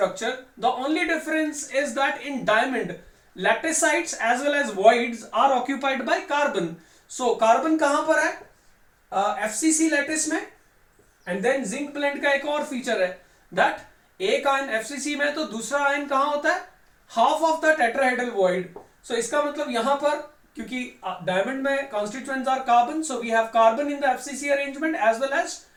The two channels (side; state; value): both; identical; correlation 1.00